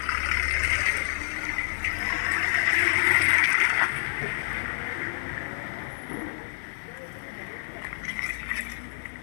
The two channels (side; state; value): right; silent; 59 dB below the other